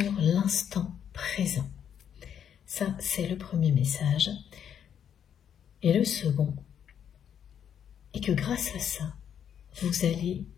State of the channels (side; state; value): right; quieter; 8.8 dB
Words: l'instant présent. Ça, c'est le premier message. Et le second est que grâce à ça, vous allez